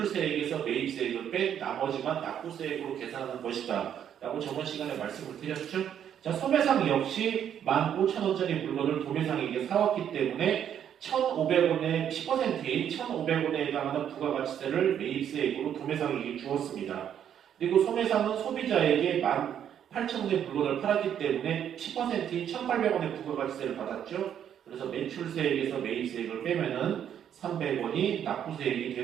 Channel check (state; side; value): quieter; left; 9.4 dB